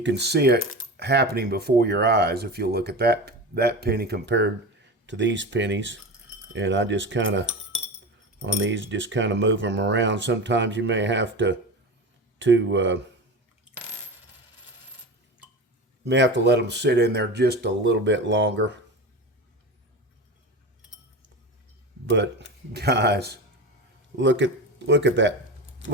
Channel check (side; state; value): both; normal; correlation 0.27